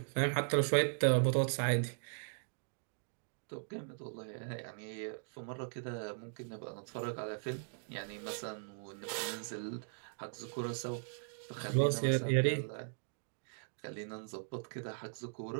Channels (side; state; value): left; silent; digital silence